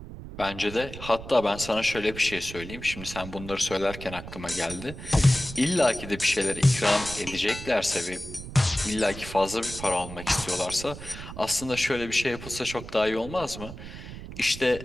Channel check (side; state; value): right; noise; rumble, 12 dB below the sound